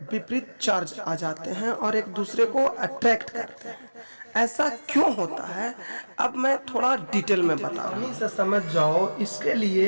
विपरीत चार्ज आ जाते हैं और एक दूसरे को अट्रैक्ट करते हैं। ऐसा क्यों होता है, अब मैं थोड़ा डिटेल में बता रहा हूं, से समझ जाओ। इसके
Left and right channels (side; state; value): both; inverted; correlation -1.00